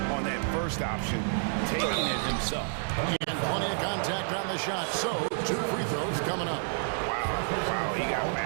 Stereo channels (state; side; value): silent; left; digital silence